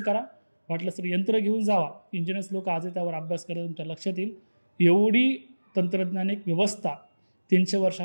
करा, वाटलं तर यंत्र घेऊन जावा, इंजिनियर्स लोक आजही त्यावर अभ्यास करत तुमच्या लक्षात येईल. एवढी तंत्रज्ञानिक व्यवस्था 300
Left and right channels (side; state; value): both; inverted; correlation -1.00